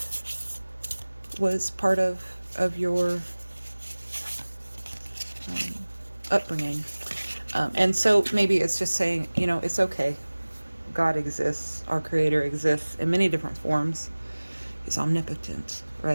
was part of your upbringing. And so maybe it's just saying, it's okay. God exists. Our Creator exists in many different forms. He's omnipotent,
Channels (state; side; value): inverted; both; correlation -1.00